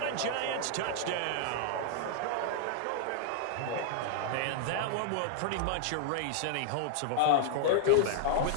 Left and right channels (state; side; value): different; both; correlation 0.00